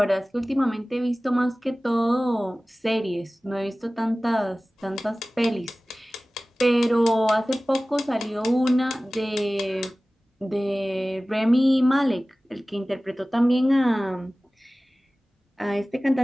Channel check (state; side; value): normal; both; correlation 0.97